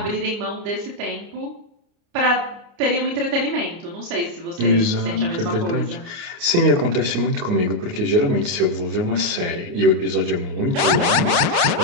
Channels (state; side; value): late; left; 29 ms